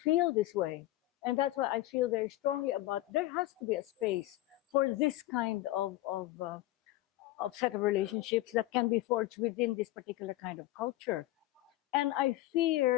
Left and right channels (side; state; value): right; quieter; 16.5 dB